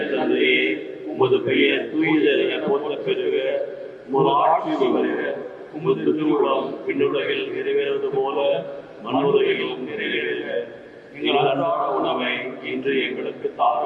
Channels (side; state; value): both; identical; correlation 1.00